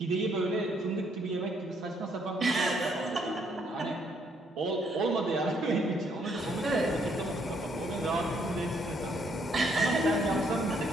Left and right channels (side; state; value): both; normal; correlation 0.70